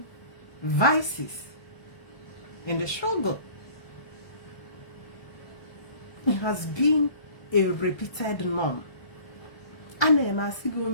vices in the struggle. It has been a repeated norm.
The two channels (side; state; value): right; late; 1.2 ms